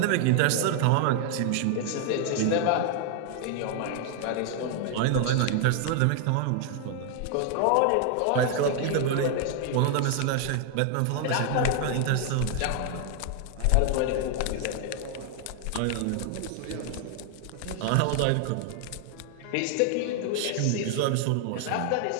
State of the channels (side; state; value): both; different; correlation 0.00